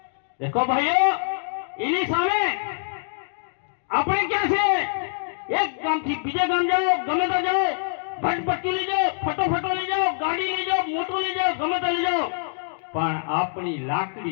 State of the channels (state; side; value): silent; right; digital silence